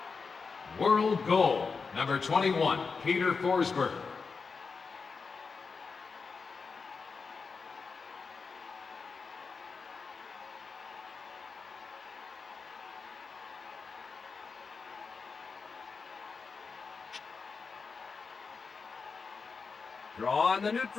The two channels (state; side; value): quieter; right; 4.9 dB